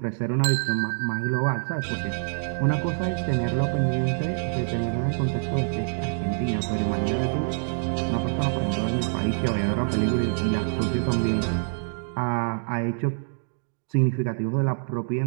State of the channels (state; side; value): silent; left; 61 dB below the other